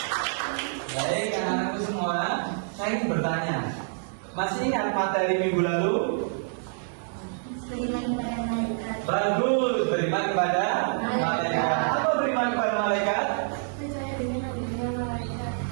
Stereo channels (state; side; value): silent; left; digital silence